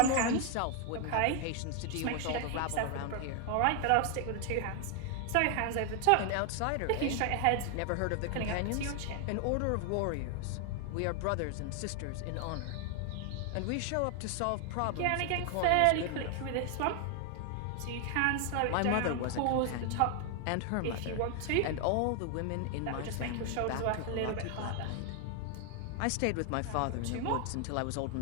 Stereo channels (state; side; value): different; both; correlation 0.00